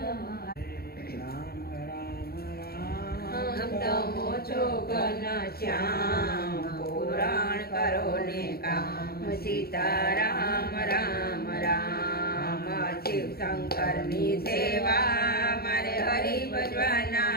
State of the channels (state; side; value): late; right; 0.45 ms